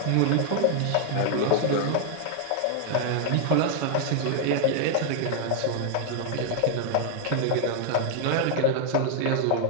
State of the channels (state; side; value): different; both; correlation 0.00